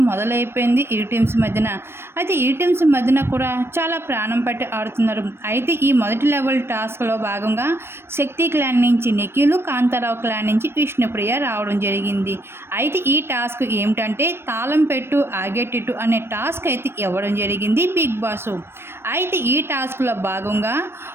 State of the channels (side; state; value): left; late; 0.12 ms